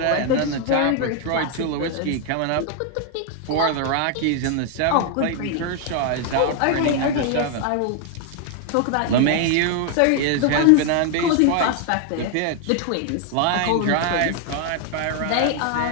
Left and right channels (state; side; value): different; both; correlation 0.00